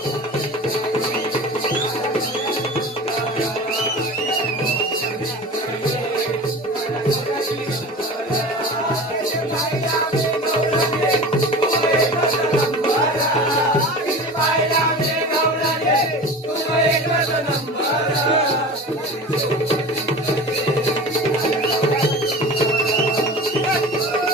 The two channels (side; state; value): both; normal; correlation 0.35